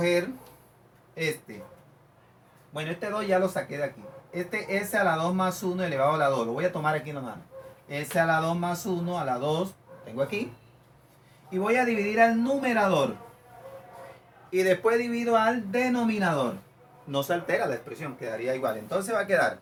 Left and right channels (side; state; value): both; identical; correlation 1.00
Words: este. Bueno, este 2 ya lo saqué de aquí. Este s a la 2 más 1 elevado a la 2. Lo voy a tomar aquí nomás. S a la 2 más 1 a la 2. Tengo aquí. Y voy a dividir al numerador. Y después divido al denominador. No se altera la expresión, quedaría igual. Entonces va a quedar